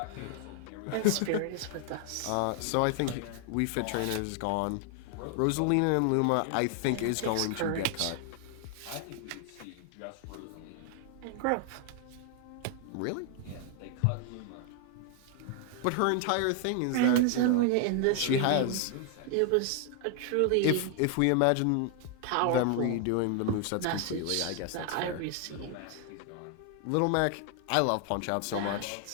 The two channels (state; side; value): different; both; correlation 0.00